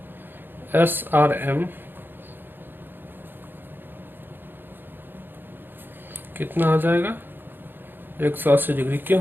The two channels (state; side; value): late; left; 0.097 ms